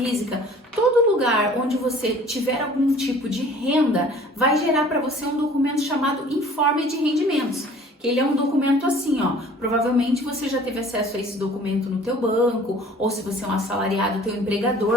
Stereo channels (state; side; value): normal; both; correlation 0.50